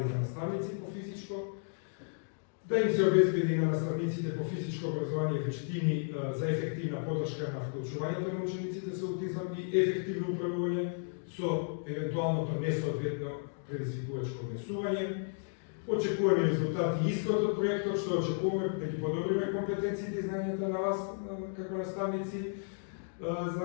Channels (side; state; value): right; silent; digital silence